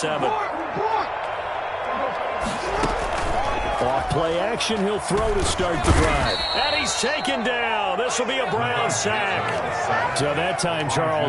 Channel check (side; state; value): both; identical; correlation 1.00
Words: Off play action, he'll throw to start the drive. And he's taken down. This will be a Brown sack. So that time,